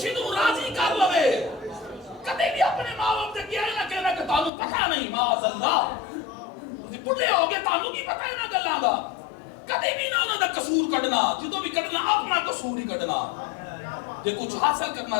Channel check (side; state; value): right; drops out; at 4.5 s